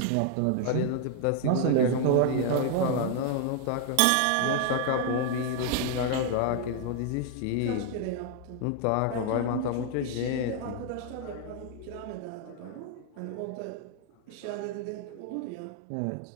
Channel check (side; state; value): both; different; correlation 0.00